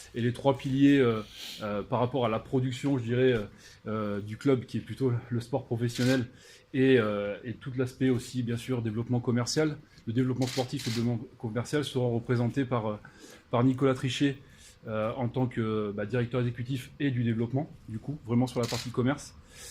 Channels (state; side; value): identical; both; correlation 1.00